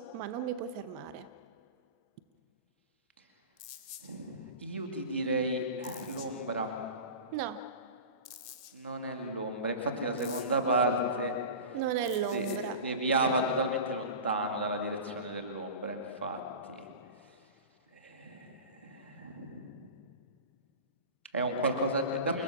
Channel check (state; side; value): late; right; 1.8 ms